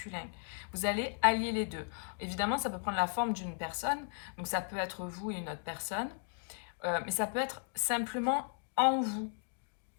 Vous allez allier les deux. Évidemment, ça peut prendre la forme d'une personne, donc ça peut être vous et une autre personne, mais ça peut être simplement en vous,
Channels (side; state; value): right; silent; 54 dB below the other